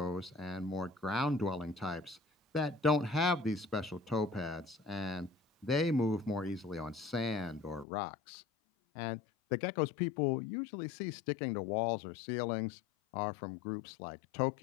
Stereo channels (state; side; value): drops out; right; at 7.9 s